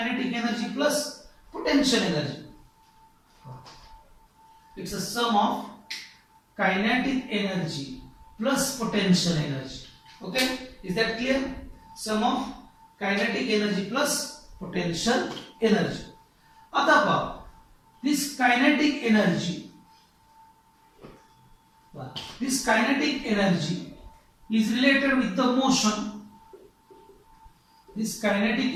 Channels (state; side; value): identical; both; correlation 1.00